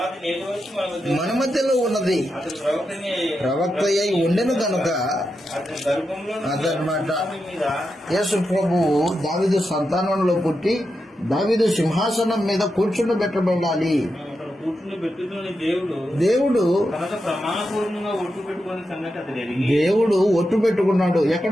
నేటి వచ్చి మన మధ్యలో ఉన్నది అతని ప్రవక్త అయి ఉండెను గనుక అతని గర్భంలో అదనమాట. మీద యేసు ప్రభువు దావీదు సంతానంలో పుట్టి దావీదు సింహాసనం మీద కూర్చుండబెట్టబడాలి. అతను కూర్చుని పెట్టుకుని దేవుడు తనతో ప్రమాణపూర్వకంగా ఒట్టు పెట్టుకునే సంగతి అతడు ఎరిగి దేవుడు ఒట్టు పెట్టుకున్నాడు. ఎక్కడ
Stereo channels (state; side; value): normal; both; correlation 0.87